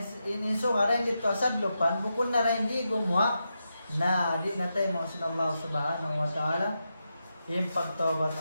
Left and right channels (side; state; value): both; inverted; correlation -0.87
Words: ininso nga rin dito asad lupan, bukod na rin di gumawa na di na tayo mga sin Allah subhanahu wa ta'ala yung pagtawbat